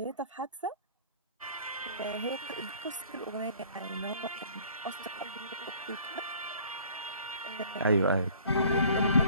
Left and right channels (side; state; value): both; inverted; correlation -0.52